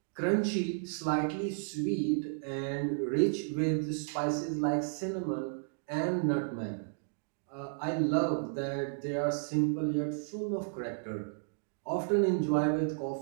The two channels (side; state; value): left; silent; digital silence